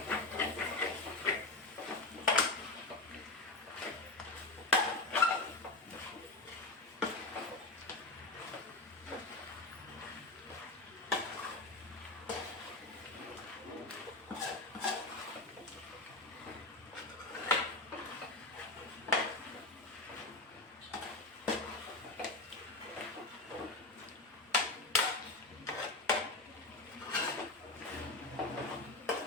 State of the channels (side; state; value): right; quieter; 3.1 dB